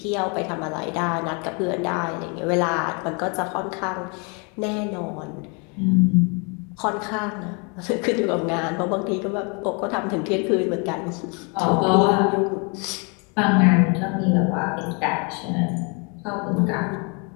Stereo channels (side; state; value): right; quieter; 33.5 dB